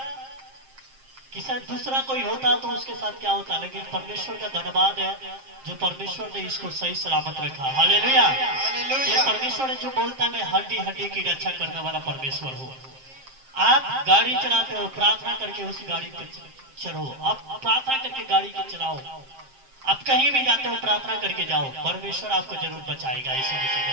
कि शायद दूसरा कोई होता तो उसके साथ क्या होता, लेकिन परमेश्वर का धन्यवाद है जो परमेश्वर ने इसको सही सलामत रखा। हालेलुया। ये हालेलुया। परमेश्वर जो बोलता है मैं हड्डी हड्डी की रक्षा करने वाला परमेश्वर हूँ। आप गाड़ी चलाते हो, प्रार्थना करके उस गाड़ी पे चढ़ो, आप प्रार्थना करके गाड़ी को चलाओ, आप कहीं भी जाते हो प्रार्थना करके जाओ, परमेश्वर आपको जरूर बचाएगा यीशु मसीह के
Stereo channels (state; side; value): late; left; 7.6 ms